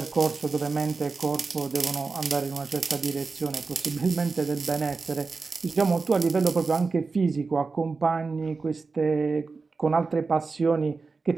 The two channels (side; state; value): left; quieter; 4.3 dB